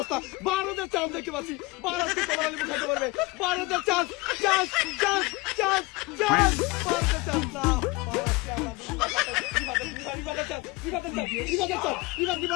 ভারতের চান্স দেখতে পাচ্ছি, ভারত কি কমলা লেবু খাইতে পারবে? ভারতের chance, chance chance chance chance, ভারতের চান্স না।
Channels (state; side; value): quieter; right; 23.4 dB